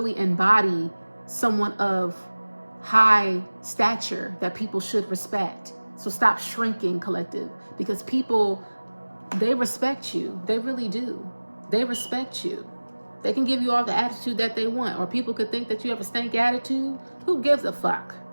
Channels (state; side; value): inverted; both; correlation -1.00